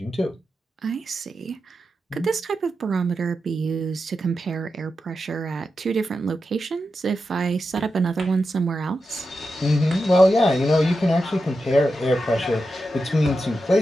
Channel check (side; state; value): both; normal; correlation 0.89